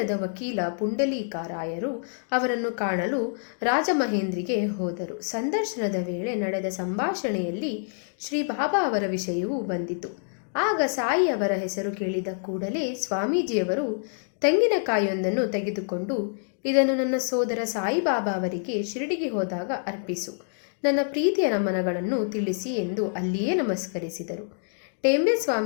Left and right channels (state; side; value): silent; right; digital silence